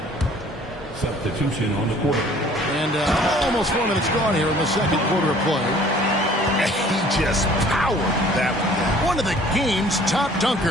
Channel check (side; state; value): both; normal; correlation 0.54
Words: Substitution on the court. And almost 4 minutes gone here in the second quarter of play. He just powered that one. One of the game's top